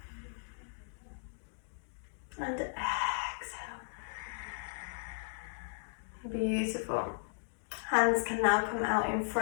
And exhale. Beautiful. Hands can now come out in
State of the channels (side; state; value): right; silent; digital silence